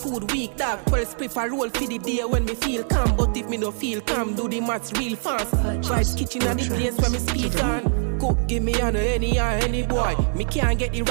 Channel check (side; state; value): left; silent; 63 dB below the other